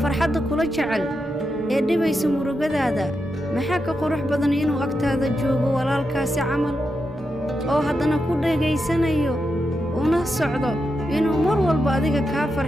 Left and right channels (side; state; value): both; normal; correlation 0.86